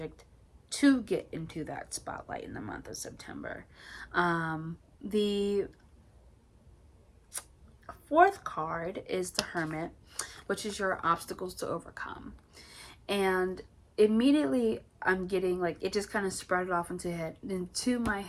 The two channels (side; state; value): both; identical; correlation 1.00